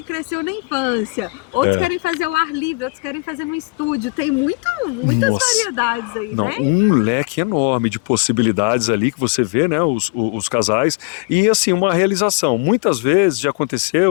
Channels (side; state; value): right; quieter; 30.4 dB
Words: cresceu na infância, outros querem fazer ao ar livre, outros querem fazer no estúdio. Tem muitas variedades aí, né? Um leque enorme de possibilidades ali que você vê, né? Os casais. E assim, uma realização. Muitas vezes já aconteceu